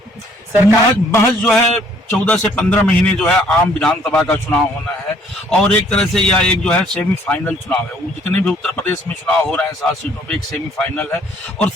सरकार महज जो है 14 से 15 महीने जो है आम विधानसभा का चुनाव होना है और एक तरह से यह एक जो है सेमीफाइनल चुनाव है। वो जितने भी उत्तर प्रदेश में चुनाव हो रहे हैं 7 सीटों पे एक सेमीफाइनल है और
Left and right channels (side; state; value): both; normal; correlation 0.62